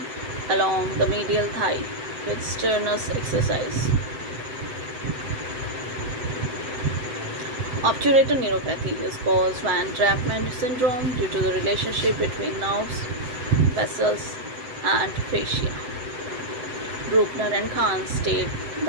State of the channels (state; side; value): late; left; 7.7 ms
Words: along the medial thigh with strenuous exercise. Obturator neuropathy is caused by entrapment syndrome due to the relationship between nerves, vessels, and fascia. Bruckner and Kahn state